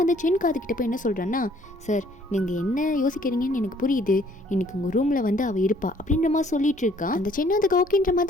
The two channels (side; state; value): both; normal; correlation 0.61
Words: சென் காதுக்கிட்ட போய் என்ன சொல்கிறான்னா, சார் நீங்கள் என்ன யோசிக்கிறீங்கன்னு எனக்கு புரியுது, இன்னைக்கு உங்கள் ரூமில் வந்து அவள் இருப்பா அப்படின்ற மாதிரி சொல்லிட்டு இருக்கா. அந்த சென்னை அதுக்கு ஓகேன்ற